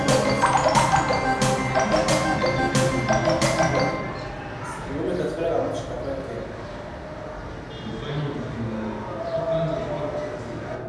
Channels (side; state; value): both; identical; correlation 1.00